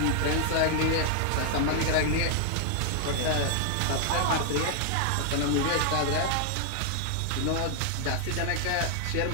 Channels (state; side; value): different; both; correlation 0.00